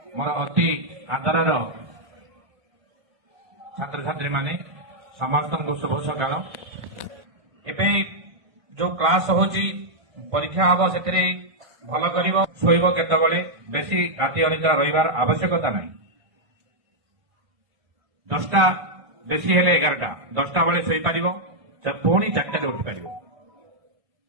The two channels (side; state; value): left; late; 1.6 ms